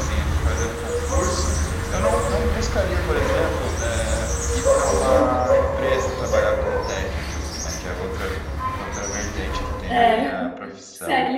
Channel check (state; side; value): identical; both; correlation 1.00